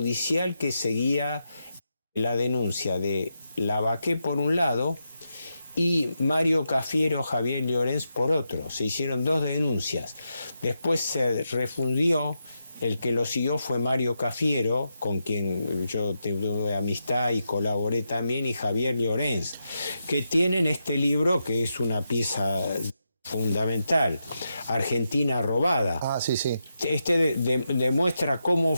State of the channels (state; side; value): inverted; both; correlation -0.86